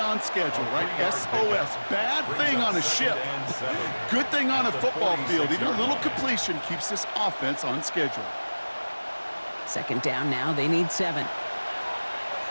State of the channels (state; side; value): inverted; both; correlation -1.00